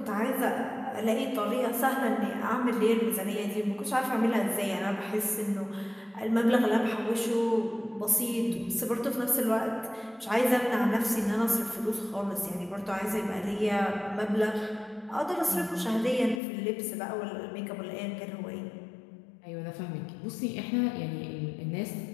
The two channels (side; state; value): right; drops out; at 16.4 s